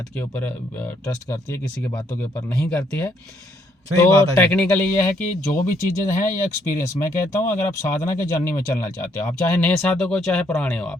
के ऊपर ट्रस्ट करती है, किसी की बातों के ऊपर नहीं करती है। तो टेक्निकली ये है कि जो भी चीज़ें हैं ये एक्सपीरियंस, मैं कहता हूँ अगर आप साधना के जर्नी में चलना चाहते हो, आप चाहे नए साधक हो चाहे पुराने हो आप,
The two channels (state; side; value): normal; both; correlation 0.70